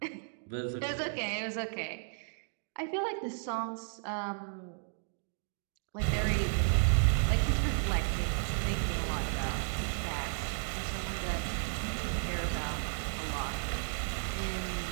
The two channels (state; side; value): silent; left; digital silence